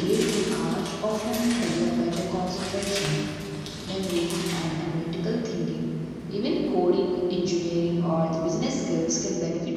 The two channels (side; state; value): both; identical; correlation 1.00